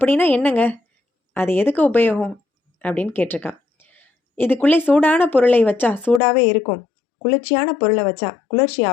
என்னங்க, அது எதுக்கு உபயோகம் அப்படின்னு கேட்டிருக்கான். இதுக்குள்ளே சூடான பொருளை வச்சா சூடாகவே இருக்கும், குளிர்ச்சியான பொருளை வச்சா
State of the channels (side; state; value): right; drops out; at 6.2 s